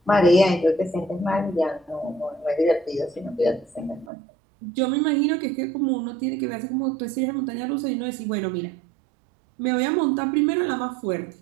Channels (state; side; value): drops out; left; at 4.1 s